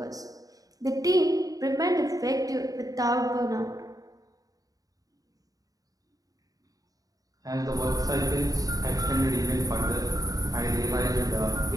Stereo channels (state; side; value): late; left; 0.18 ms